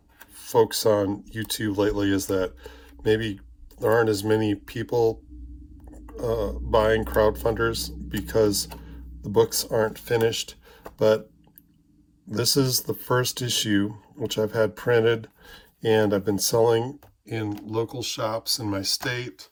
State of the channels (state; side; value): identical; both; correlation 1.00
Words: folks on YouTube lately is that maybe there aren't as many people buying crowdfunders because the books aren't finished. But this is the first issue, which I've had printed, and I've been selling in local shops in my state.